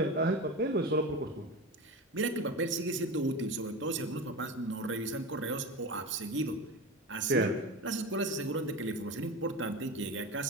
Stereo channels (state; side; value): normal; both; correlation 0.26